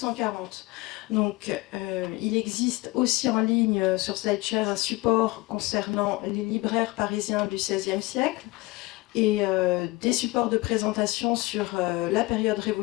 Donc, il existe aussi en ligne sur SlideShare un support concernant les libraires parisiens du XVIe siècle et des supports de présentation sur la période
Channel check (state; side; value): quieter; right; 21.7 dB